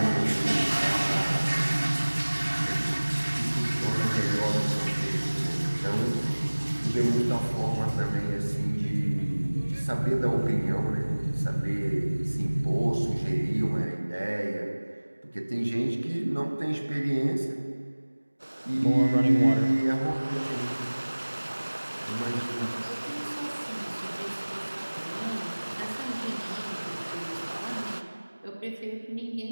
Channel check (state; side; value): inverted; both; correlation -1.00